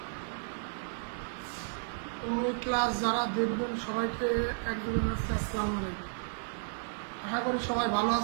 ও এই ক্লাস যারা দেখবেন সবাইকে একদম আসসালামু আলাইকুম। আশা করি সবাই ভালো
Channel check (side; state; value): left; silent; digital silence